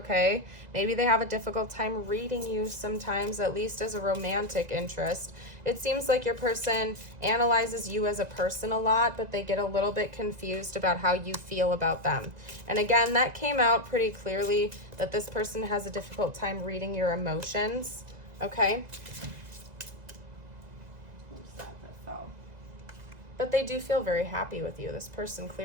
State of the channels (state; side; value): late; left; 2.0 ms